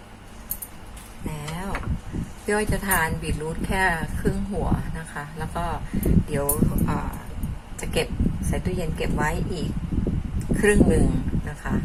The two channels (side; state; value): both; identical; correlation 1.00